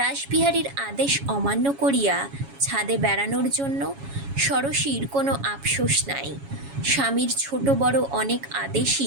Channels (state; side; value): late; left; 7.2 ms